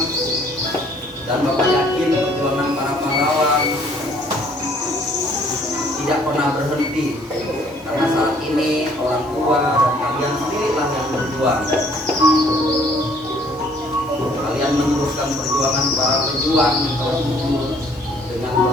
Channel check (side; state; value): both; normal; correlation 0.60